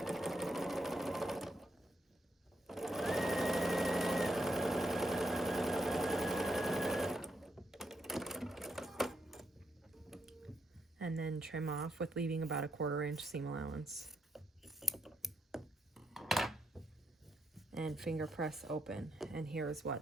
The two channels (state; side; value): normal; both; correlation 0.80